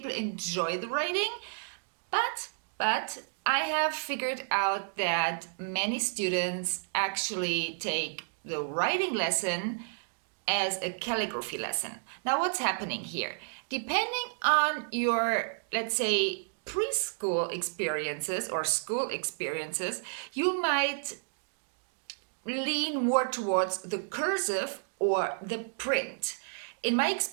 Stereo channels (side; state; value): left; silent; digital silence